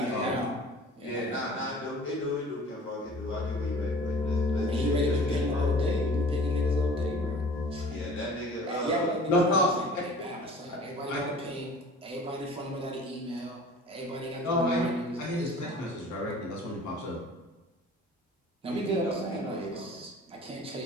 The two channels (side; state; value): both; normal; correlation 0.45